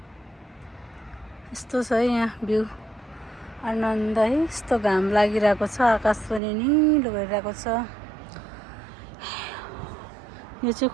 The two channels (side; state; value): left; drops out; at 6.4 s